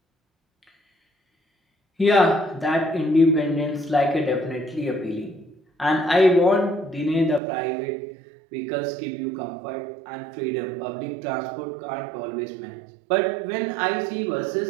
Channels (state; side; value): drops out; left; at 7.4 s